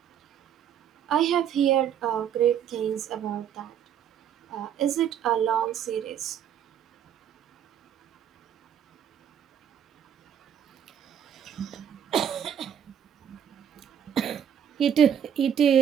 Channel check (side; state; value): left; quieter; 9.1 dB